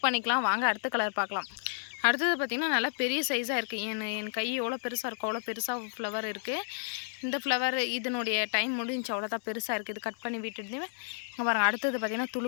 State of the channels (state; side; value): silent; right; 57 dB below the other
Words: பண்ணிக்கலாம். வாங்க அடுத்த கலர் பார்க்கலாம். அடுத்தது பார்த்திங்கன்னா நல்லா பெரிய சைஸாக இருக்குது. என் கை எவ்வளோ பெருசாக இருக்கும் அவ்வளோ பெருசாக ஃப்ளவர் இருக்குது. இந்த ஃப்ளவர் இதனுடைய டைம் முடிஞ்சு அவ்வளோதான் பெருசாக இருக்குது. இது கட் பண்ணி விட்டுட்டு இங்கே பாருங்கள். அடுத்தது பார்த்திங்கன்னா